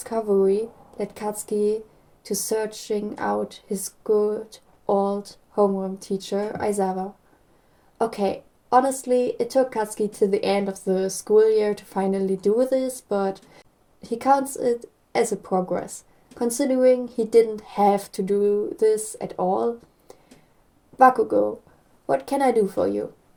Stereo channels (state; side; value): identical; both; correlation 1.00